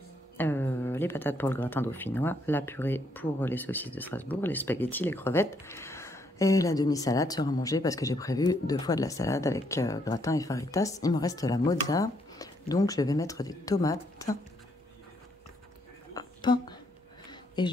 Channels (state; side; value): normal; both; correlation 0.72